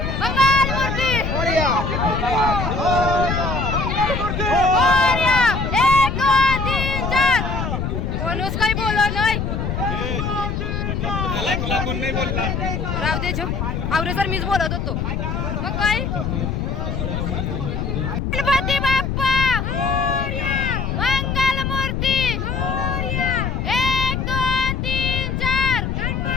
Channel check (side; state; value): left; noise; rumble, 2 dB below the sound